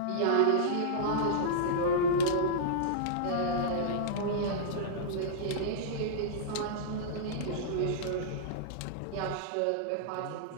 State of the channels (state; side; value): different; both; correlation -0.03